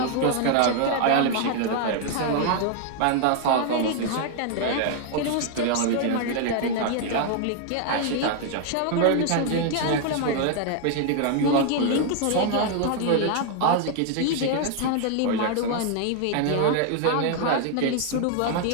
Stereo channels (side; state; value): both; different; correlation 0.00